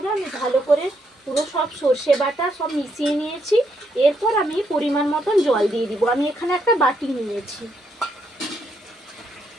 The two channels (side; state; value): both; normal; correlation 0.77